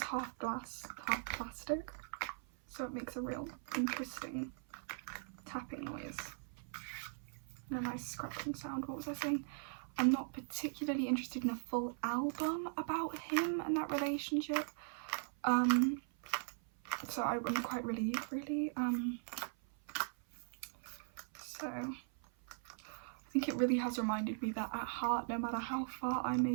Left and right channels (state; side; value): silent; left; 51 dB below the other